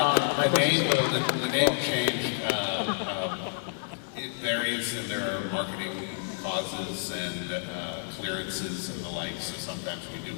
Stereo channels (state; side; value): silent; right; digital silence